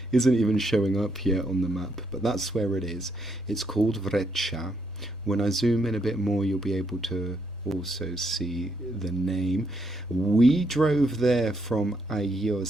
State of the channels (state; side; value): normal; both; correlation 0.76